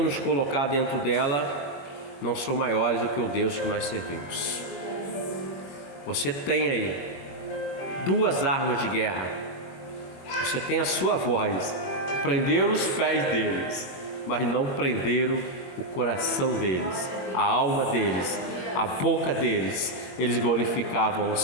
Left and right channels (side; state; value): right; late; 21 ms